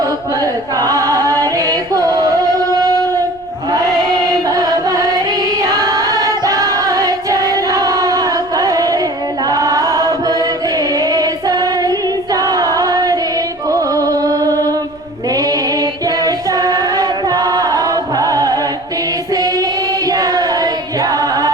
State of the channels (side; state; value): left; noise; rumble, 25 dB below the sound